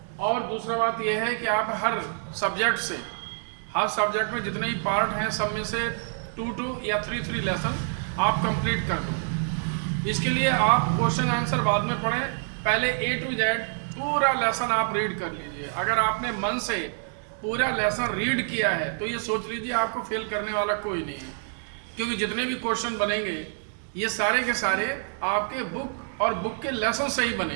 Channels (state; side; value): silent; left; digital silence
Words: और दूसरा बात यह है कि आप हर सब्जेक्ट में जितने भी पार्ट हैं सब में से 2 या 3 लेसन आप कंप्लीट कर दो। इसके लिए आप क्वेश्चन आंसर बाद में पढ़ें, पहले A to Z पूरा लेसन आप रीड कर लीजिए। अगर आपने मन से पूरा लेसन रीड किया है तो ये सोच लीजिए आपको फेल करने वाला कोई नहीं है, क्योंकि जितने भी क्वेश्चन बनेंगे ये सारे के सारे आपके बुक और बुक के लेसन से ही